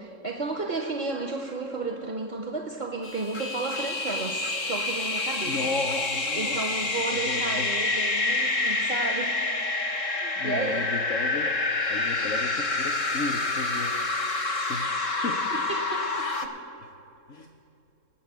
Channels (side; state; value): right; late; 3.7 ms